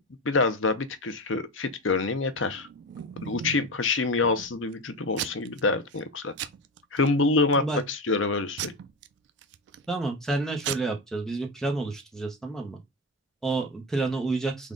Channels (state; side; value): normal; both; correlation 0.20